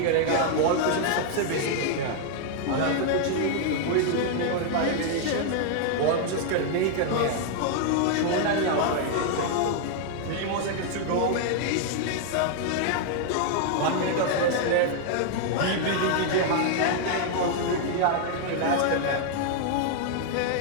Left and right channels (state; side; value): different; both; correlation 0.00